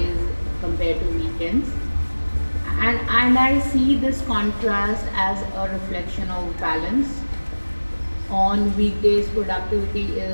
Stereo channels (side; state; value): both; inverted; correlation -1.00